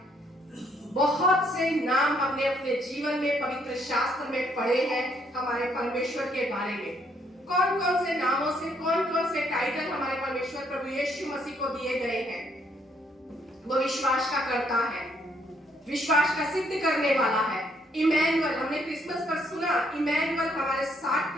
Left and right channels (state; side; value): normal; both; correlation 0.70